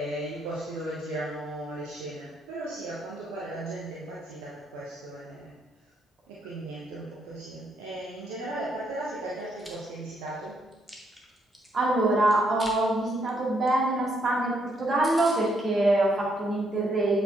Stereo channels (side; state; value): both; normal; correlation 0.74